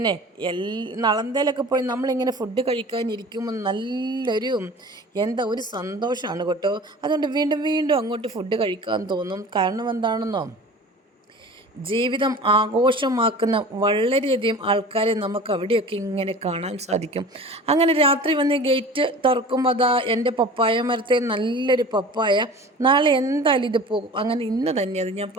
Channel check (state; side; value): normal; both; correlation 0.40